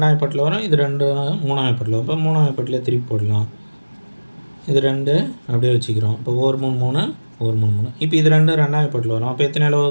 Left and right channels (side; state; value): both; inverted; correlation -1.00